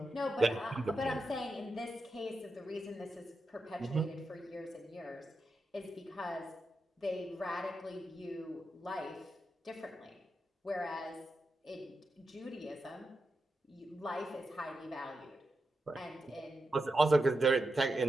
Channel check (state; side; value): normal; both; correlation 0.88